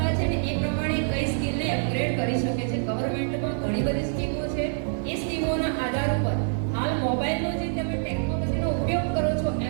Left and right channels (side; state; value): left; silent; digital silence